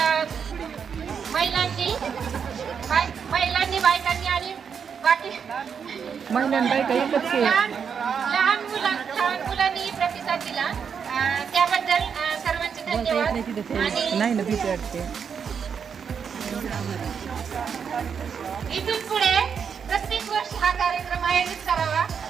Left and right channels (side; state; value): left; quieter; 6.8 dB